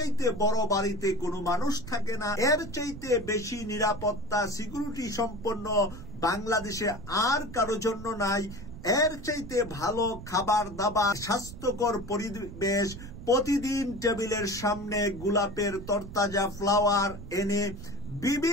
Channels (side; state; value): right; noise; rumble, 12 dB below the sound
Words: বড় বাড়িতে কোনো মানুষ থাকে না, এর চাইতে বেশি নিরাপত্তা সিকিউরিটি সম্পন্ন বাংলাদেশে আর কারো জন্য নাই, এর চাইতে ভালো খাবার দাবার, স্বাস্থ্যকর পরিবেশ, প্রতিদিন টেবিলের সামনে গোলাপের তরতাজা ফ্লাওয়ার এনে